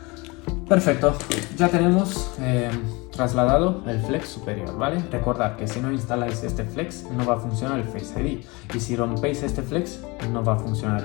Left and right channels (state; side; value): quieter; right; 25.7 dB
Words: Perfecto, ya tenemos trasladado el flex superior, ¿vale? Recordad que si no instaláis este flex no va a funcionar el Face ID, y si rompéis este flex no va a funcionar